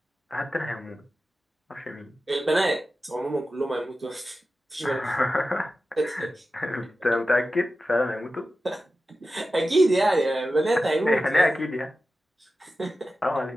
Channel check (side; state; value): both; normal; correlation 0.93